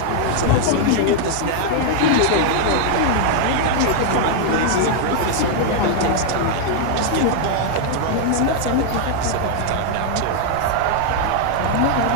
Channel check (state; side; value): different; both; correlation 0.00